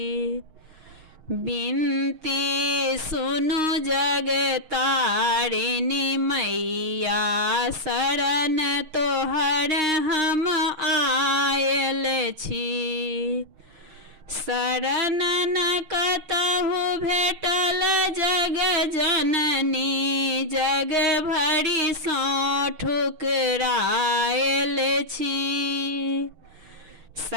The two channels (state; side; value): late; left; 6.4 ms